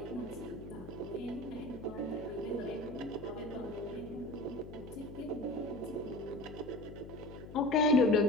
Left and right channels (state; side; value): noise; left; hum, 13 dB below the sound